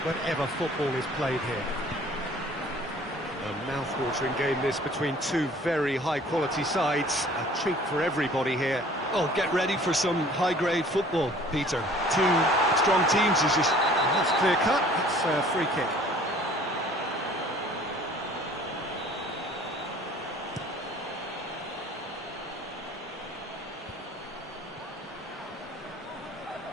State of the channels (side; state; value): both; normal; correlation 0.52